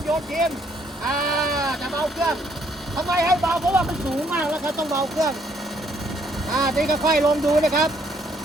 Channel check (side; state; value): both; normal; correlation 0.68